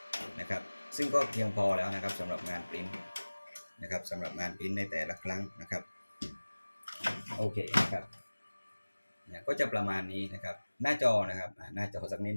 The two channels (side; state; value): both; inverted; correlation -1.00